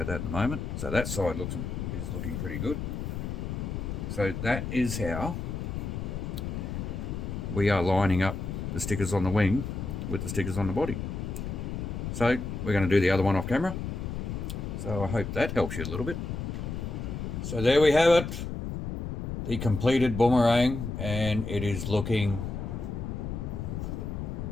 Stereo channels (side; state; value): left; noise; rumble, 4 dB below the sound